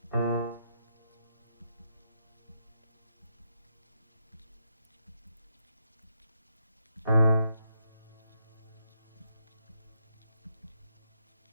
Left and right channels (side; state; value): both; inverted; correlation -0.79